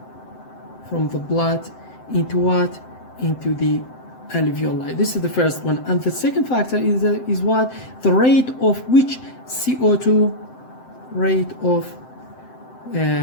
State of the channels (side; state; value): right; late; 7.8 ms